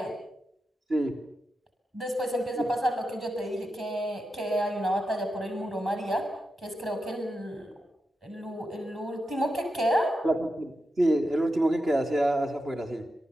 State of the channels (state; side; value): normal; both; correlation 0.88